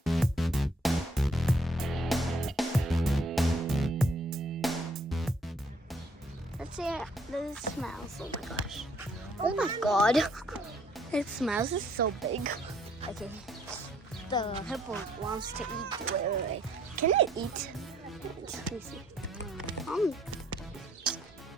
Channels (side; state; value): both; normal; correlation 0.65